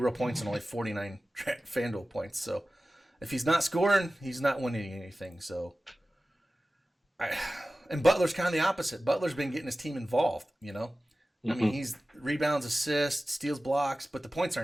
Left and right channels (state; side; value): normal; both; correlation 0.96